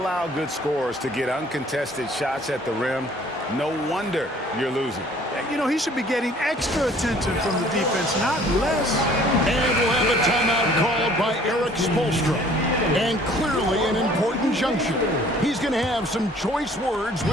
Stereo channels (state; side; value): normal; both; correlation 0.55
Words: good scorers to get uncontested shots at the rim, no wonder you're losing. You know, he should be getting extra attention from the defense, not less. And we'll have a timeout called by Eric Spoelstra. And clearly an important junction. He's going to have some choice words